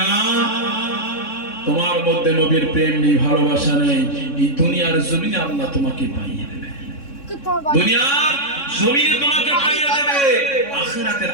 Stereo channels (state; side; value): late; right; 3.6 ms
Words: না তোমার মধ্যে নবীর প্রেম নেই, ভালোবাসা নেই, এই দুনিয়ার জমিনে আল্লাহ তোমাকে পাইয়ে দেবে। দুনিয়ার জমিনে তোমাকে পাইয়ে দেবে। আখিরাতের